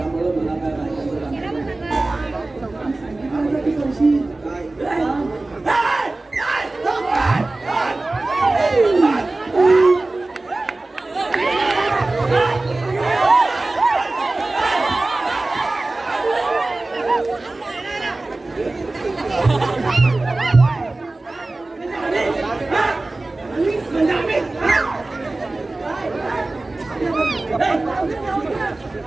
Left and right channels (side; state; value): left; quieter; 3.0 dB